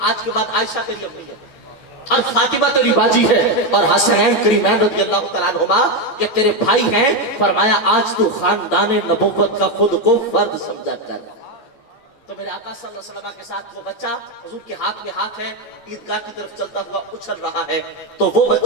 آج کے بعد عائشہ تیری امی ہے اور فاطمہ تیری باجی ہے اور حسنین کریمین رضی اللہ تعالیٰ عنہما یہ تیرے بھائی ہیں. فرمایا آج تو خاندان نبوت کا خود کو فرد سمجھا کر. تو میرے آقا صلی اللہ علیہ وسلم کے ساتھ وہ بچہ حضور کے ہاتھ میں ہاتھ ہے، عیدگاہ کی طرف چلتا ہوا اچھل رہا ہے. تو وہ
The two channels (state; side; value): late; right; 14 ms